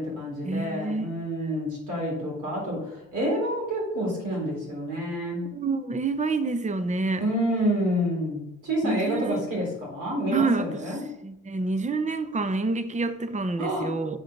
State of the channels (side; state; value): both; normal; correlation 0.50